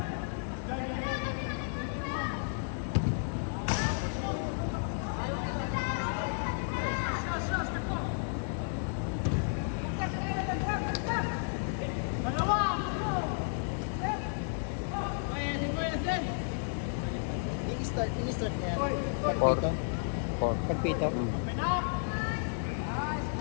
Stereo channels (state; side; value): silent; right; 56 dB below the other